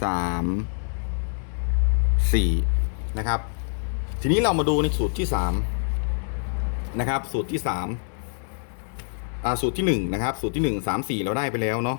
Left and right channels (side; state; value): right; silent; digital silence